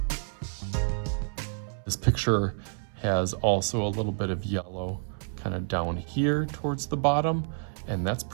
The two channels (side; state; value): left; silent; 59 dB below the other